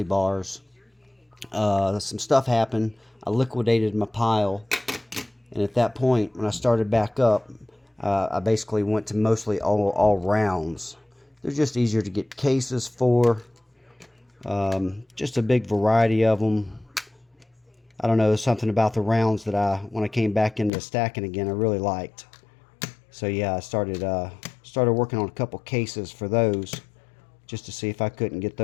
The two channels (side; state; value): right; drops out; at 20.7 s